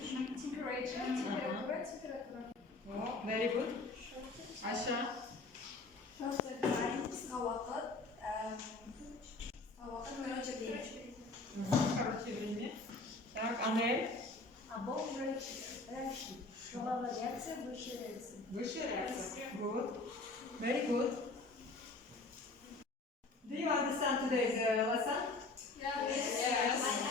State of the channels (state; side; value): quieter; right; 3.4 dB